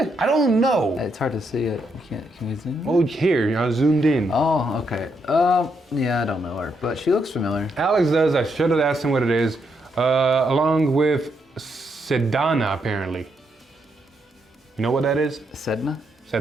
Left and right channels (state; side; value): normal; both; correlation 0.78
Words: I don't know. It's hard to see it. Can we zoom in? Oh, here, I zoomed in. Oh, okay. Yeah, I don't know her, but she looks familiar. Alex does. I should have asked him what it is. Along with Sedana, apparently. You know what that is? Sedna?